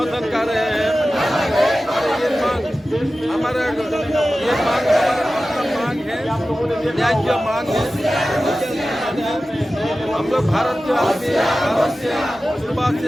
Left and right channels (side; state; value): both; normal; correlation 0.95